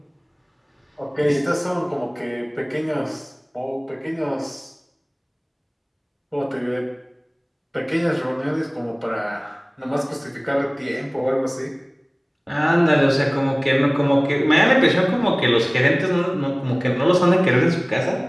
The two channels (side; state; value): both; identical; correlation 1.00